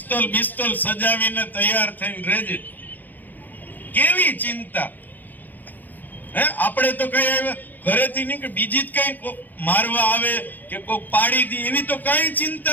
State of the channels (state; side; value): late; right; 0.086 ms